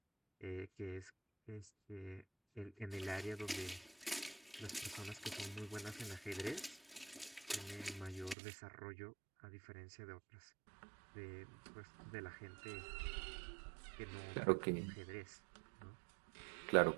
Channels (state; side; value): drops out; left; at 8.3 s